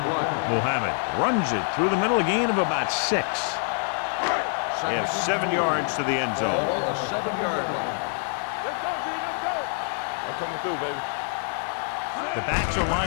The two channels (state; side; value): silent; right; 61 dB below the other